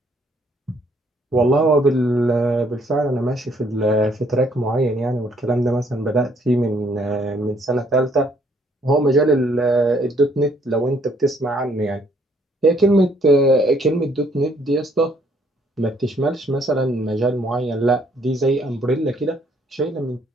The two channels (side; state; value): both; normal; correlation 0.66